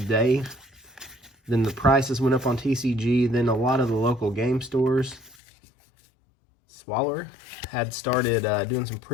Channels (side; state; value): right; drops out; at 5.4 s